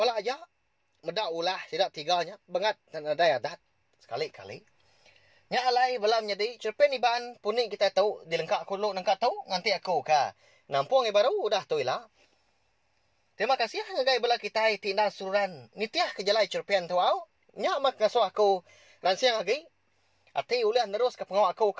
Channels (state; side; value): identical; both; correlation 1.00